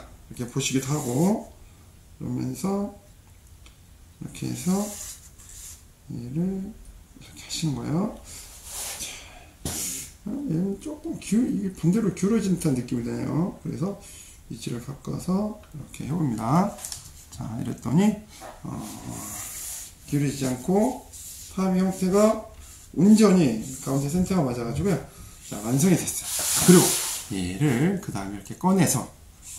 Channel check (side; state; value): both; identical; correlation 1.00